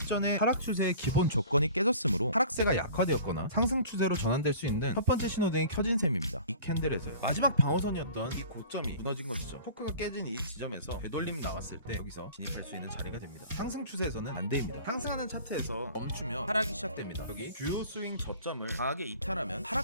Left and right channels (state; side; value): inverted; both; correlation -0.44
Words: 하락 추세의 기본 조건이 깨졌으므로 하락세가 약화되었거나 상승 추세로 전환될 수 있는 첫 번째 신호등이 켜진 셈입니다. 이 캔들에서요. 마지막 방어선이었던 이 고점이 무너진 것이죠. 초크가 깨진 이 지점에서 되돌림이 나왔을 때 여기서 진입할 수 있는 자리가 됩니다. 상승 추세에서는 반대입니다. 상승하는 차트에서 멈추며 하락이 시작됩니다. 여기 주요 스윙 저점을 강하게 이탈하면